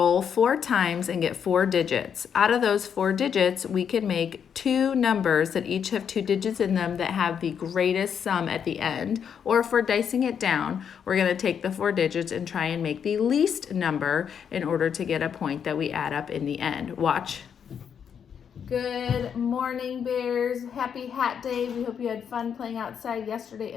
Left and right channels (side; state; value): right; quieter; 7.7 dB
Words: 4 times and get 4 digits. Out of those 4 digits, we can make 2 numbers that each have 2 digits in them that have the greatest sum at the end. Or if we're dicing it down, we're going to take the 4 digits and try and make the least number in order to get a point that we add up in the end. Watch. Good morning, Bears. Happy Hat Day. We hope you had fun playing outside yesterday